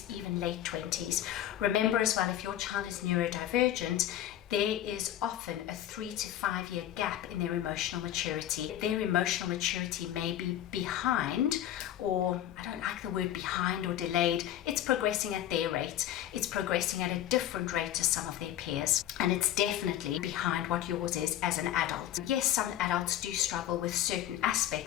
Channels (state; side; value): quieter; right; 12.2 dB